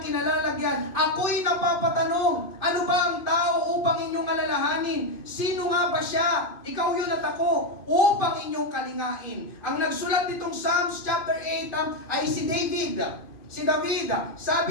kinalalagyan, ako'y napapatanong, ano ba ang tao upang inyong alalahanin? Sino nga ba siya? Ikaw yun at ako, upang inyong kalingain. Ang nagsulat nitong Psalms chapter 8 ay si David. Si David,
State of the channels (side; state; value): right; late; 2.5 ms